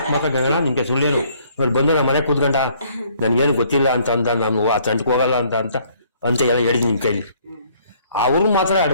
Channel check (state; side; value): inverted; both; correlation -0.62